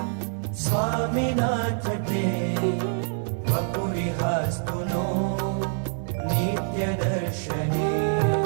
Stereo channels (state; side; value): silent; left; digital silence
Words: स्वामिनाथ ते वपुरिहास्तु नो नित्यदर्शने